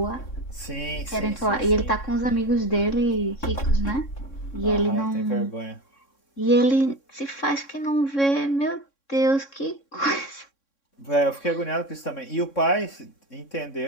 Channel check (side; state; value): right; late; 3.6 ms